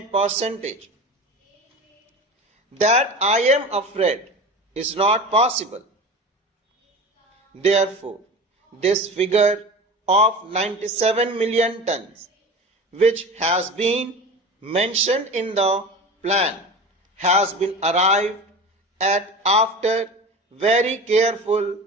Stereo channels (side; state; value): both; normal; correlation 0.33